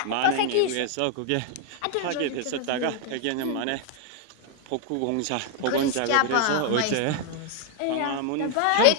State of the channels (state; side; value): different; both; correlation 0.00